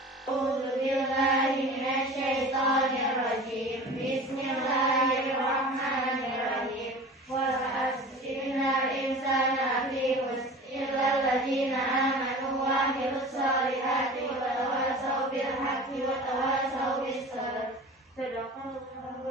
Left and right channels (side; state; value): both; normal; correlation 0.38